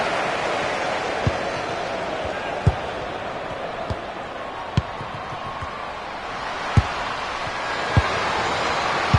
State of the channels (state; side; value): identical; both; correlation 1.00